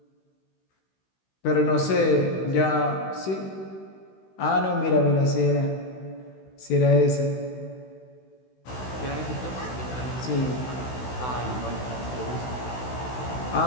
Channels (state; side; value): late; right; 16 ms